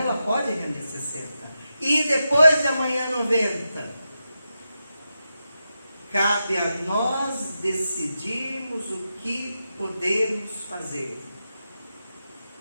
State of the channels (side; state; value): both; inverted; correlation -0.89